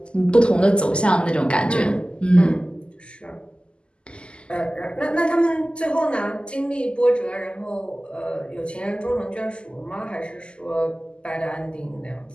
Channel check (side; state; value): right; late; 0.050 ms